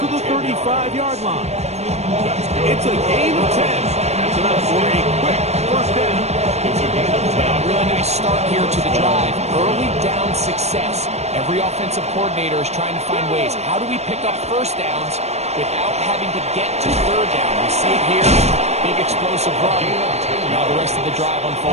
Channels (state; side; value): late; left; 0.31 ms